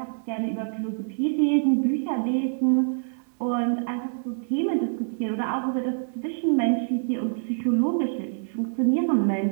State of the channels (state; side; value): silent; left; 61 dB below the other